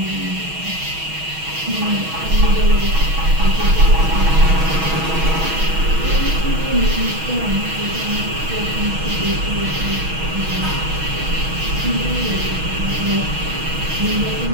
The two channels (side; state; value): left; late; 6.3 ms